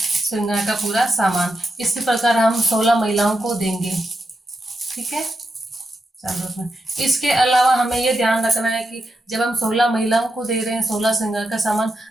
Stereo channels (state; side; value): normal; both; correlation 0.86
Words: श्रृंगार का पूरा सामान। इसी प्रकार हम 16 महिलाओं को देंगे। ठीक है। चलो, इसके अलावा हमें ये ध्यान रखना है कि जब हम 16 महिलाओं को दे रहे हैं 16 श्रृंगार का सामान,